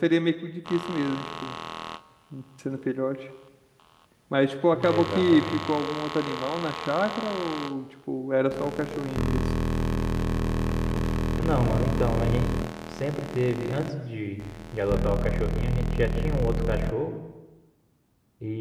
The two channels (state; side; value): identical; both; correlation 1.00